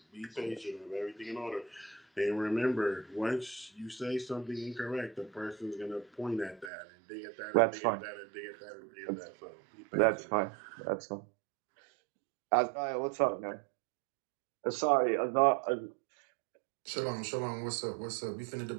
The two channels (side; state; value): left; drops out; at 6.7 s